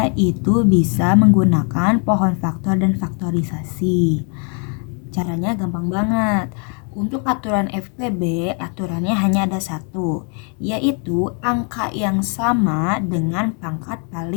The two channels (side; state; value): right; quieter; 38.8 dB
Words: itu bisa menggunakan pohon faktor dan faktorisasi. Caranya gampang banget. Untuk aturan FPB, aturannya hanya ada satu, yaitu angka yang sama dengan pangkat